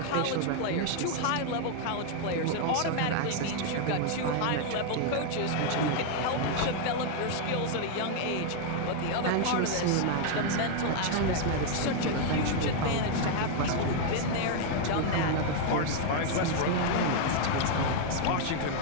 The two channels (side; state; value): both; different; correlation 0.00